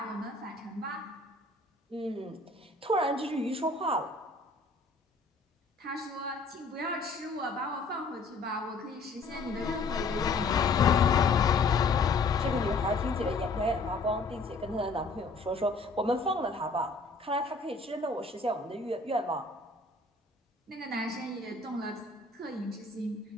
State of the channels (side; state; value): right; quieter; 3.5 dB